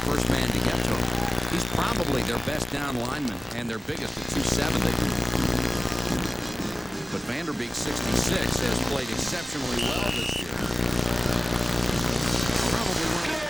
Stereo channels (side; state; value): both; normal; correlation 0.96